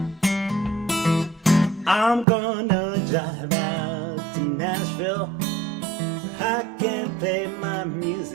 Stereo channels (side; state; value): left; drops out; at 2.2 s